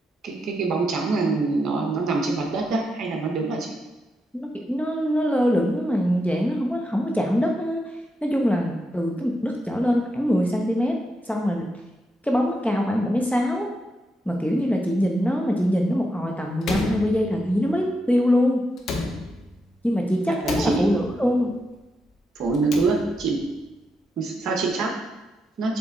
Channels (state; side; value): normal; both; correlation 0.84